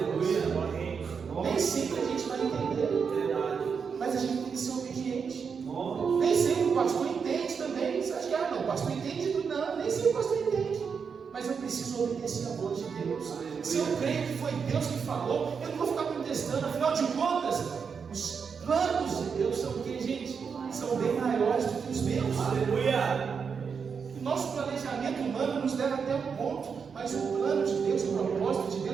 Nem sempre a gente vai entender, mas a gente tem que ser obediente. Nem sempre o pastor entende também. Você acha que não, o pastor entende tudo? Não, nem sempre o pastor entende. Mas eu preciso obedecer a voz de Deus. Se eu creio que foi Deus que falou, eu não vou ficar contestando. Afinal de contas, os planos de Deus são o que, gente? São bem maiores do que os meus. Aleluia! O nosso planejamento humano nos leva até um ponto, mas o plano de Deus, o propósito de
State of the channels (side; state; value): left; quieter; 6.1 dB